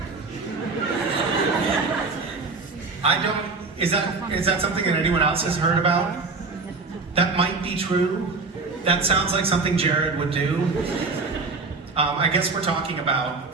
I don't. Is that something that anyone else has heard about? That might be true. That sounds like something Jared would do. I guess we're talking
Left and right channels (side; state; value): left; quieter; 3.9 dB